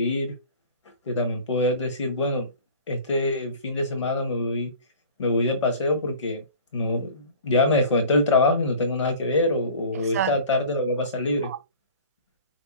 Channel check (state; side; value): inverted; both; correlation -0.43